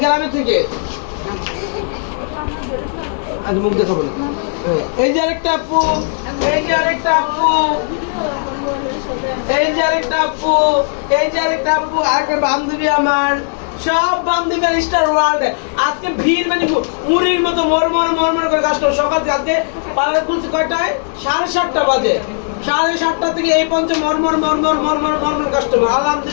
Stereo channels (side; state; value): right; silent; digital silence